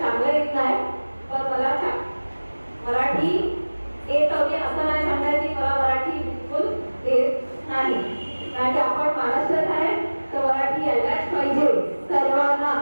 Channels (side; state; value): both; inverted; correlation -1.00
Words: येत नाही, पण मला मराठी येत हवी असं नाही सांगायची. मला मराठी बिलकुल येत नाही, कारण की आपण महाराष्ट्रात आहे तर मराठी यायलाच पाहिजे सर्वांना.